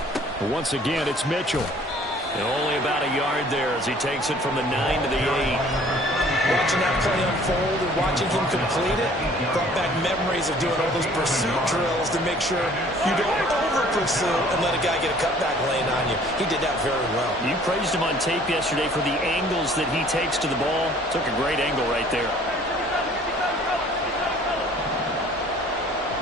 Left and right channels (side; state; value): both; normal; correlation 0.54